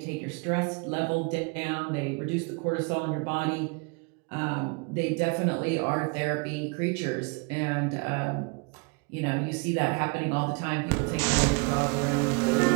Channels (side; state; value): left; quieter; 32.5 dB